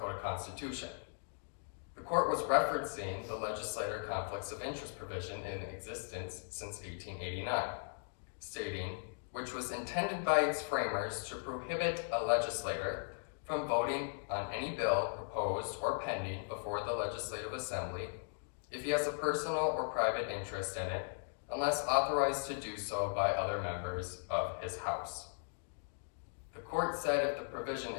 Constitution. The court was referencing the legislator conflicts of interest provision in existence since 1889, stating, which was intended by its framers to prohibit a legislator from voting on any bill proposed or pending before the Legislative Assembly if he has a personal or private interest in it, unless authorized to do so by other members of his House. The court said if the provision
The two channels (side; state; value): right; silent; digital silence